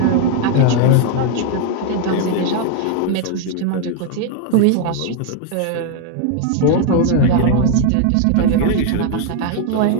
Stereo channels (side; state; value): both; different; correlation 0.00